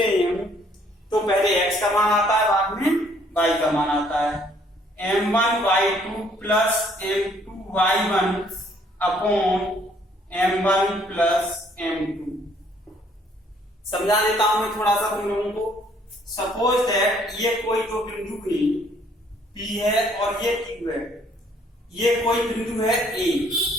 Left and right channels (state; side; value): normal; both; correlation 0.63